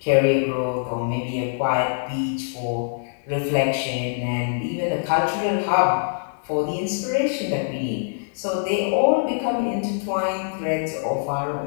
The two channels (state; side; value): silent; right; digital silence